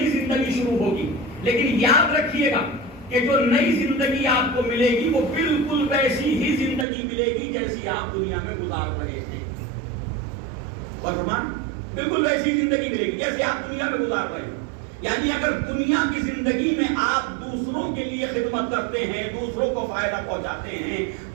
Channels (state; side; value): drops out; left; at 6.9 s